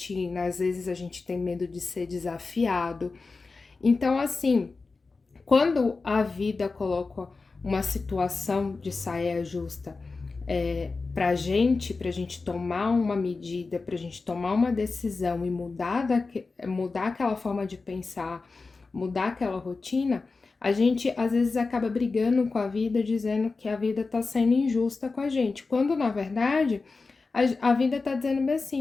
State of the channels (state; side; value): quieter; right; 4.0 dB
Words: às vezes a gente tem medo de ser desafiado. Então, assim, quando a vida coloca uma situação de saia justa pra gente tomar uma medida, pra gente tomar uma decisão e mudar aquela forma de pensar, mudar aquela rotina, a gente às vezes acaba brigando com a vida, dizendo que a vida tá sendo injusta com a gente, quando na verdade a vida tá dizendo bem